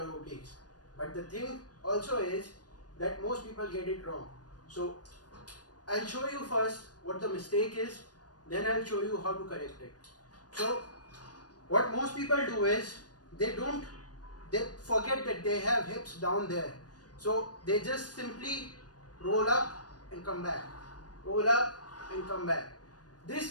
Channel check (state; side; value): late; right; 0.69 ms